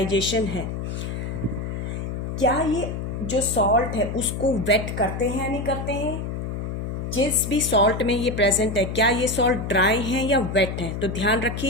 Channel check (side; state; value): left; noise; hum, 4 dB below the sound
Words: है, क्या ये जो सॉल्ट है उसको वेट करते हैं या नहीं करते हैं। जिस भी सॉल्ट में ये प्रेजेंट है, क्या ये सॉल्ट ड्राई हैं या वेट हैं। तो ध्यान